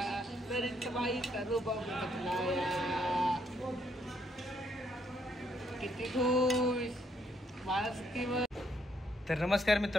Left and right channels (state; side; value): normal; both; correlation 0.72